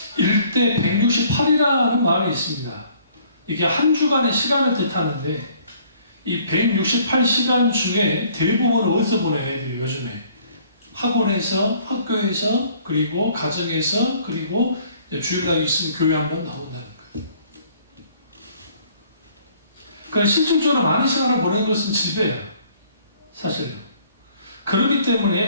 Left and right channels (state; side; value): inverted; both; correlation -0.59